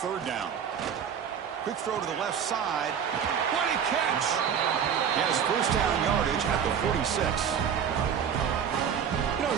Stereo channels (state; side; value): quieter; left; 7.8 dB